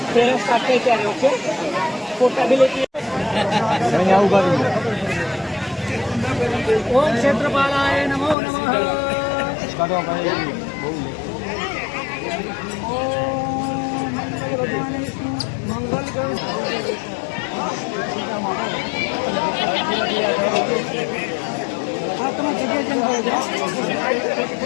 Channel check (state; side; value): drops out; right; at 8.3 s